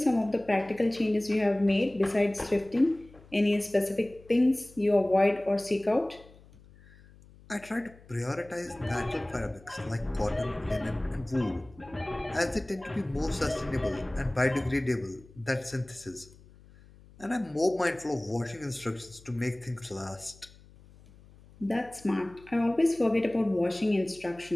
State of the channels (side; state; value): left; noise; hum, 24 dB below the sound